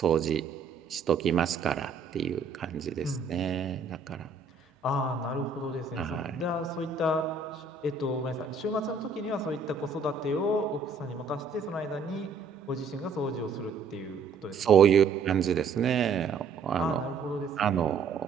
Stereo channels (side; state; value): left; quieter; 4.9 dB